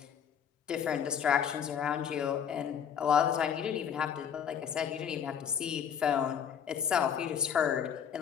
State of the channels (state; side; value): quieter; right; 8.3 dB